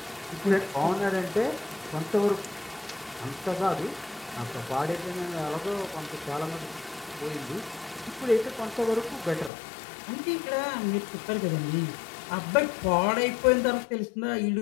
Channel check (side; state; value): right; drops out; at 9.5 s